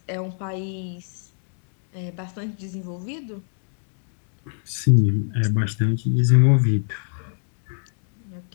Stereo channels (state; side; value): silent; right; 62 dB below the other